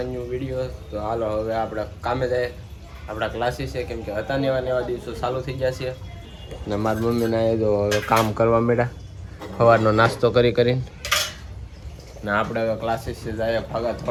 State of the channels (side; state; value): both; identical; correlation 1.00